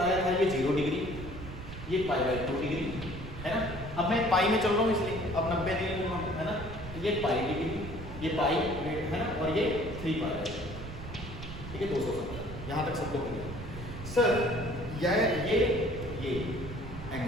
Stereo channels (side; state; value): right; noise; rumble, 10 dB below the sound